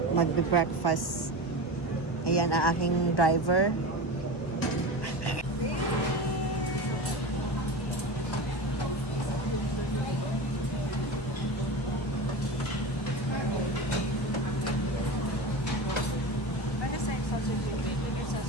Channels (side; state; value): right; late; 1.1 ms